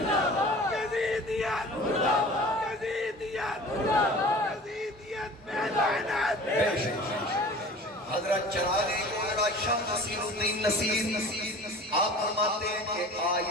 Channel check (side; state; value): both; normal; correlation 0.41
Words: حضرت چراغ گولڑا شاہ نصیر الدین نصیر آپ فرماتے ہیں کہ